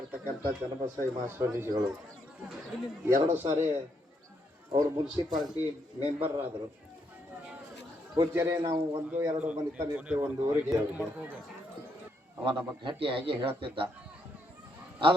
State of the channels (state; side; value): normal; both; correlation 0.76